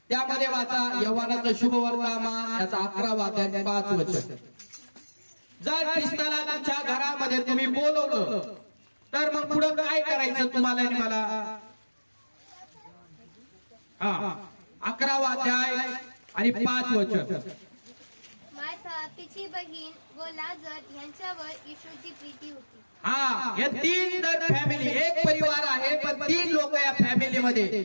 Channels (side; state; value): both; inverted; correlation -1.00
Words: त्यामध्ये वाचा यव्हानाचं शुभ वर्तमान याचा 11वा अध्याय 5 वचन. जर ख्रिस्ताला तुमच्या घरामध्ये तुम्ही बोलवलं तर मग पुढे काय करायचं तुम्हाला आणि मला. 11वा अध्याय आणि 5 वचन. मार्था, तिची बहीण व लाजर यांच्यावर येशूची प्रीती होती. हे 3 जर फॅमिली एक परिवार आहे पण 3 लोक या फॅमिलीमध्ये